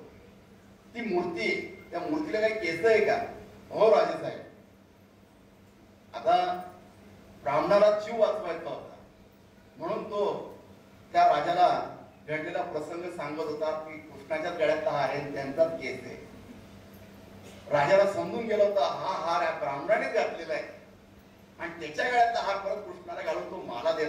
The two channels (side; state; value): both; identical; correlation 1.00